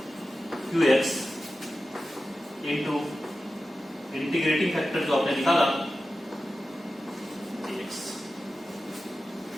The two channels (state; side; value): normal; both; correlation 0.93